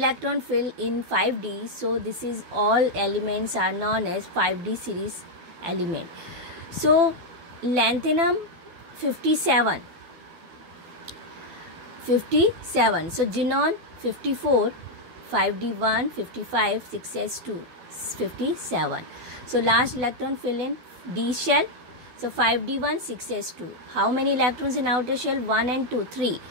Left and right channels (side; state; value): left; late; 12 ms